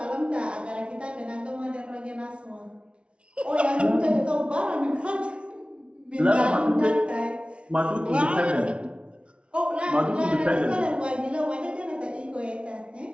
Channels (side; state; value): left; late; 0.059 ms